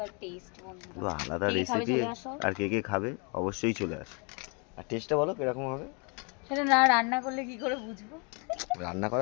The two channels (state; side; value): quieter; right; 34.0 dB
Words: টেস্ট বন্ধুরা। পুরো আলাদা কে কে খাবে রেসিপি। চলে আসো। আর কে কে খাবে অবশ্যই চলে আসে। আর টেস্টটা বলো কিরকম হবে। সেটা না রান্না করলে কি করে বুঝবো। রান্না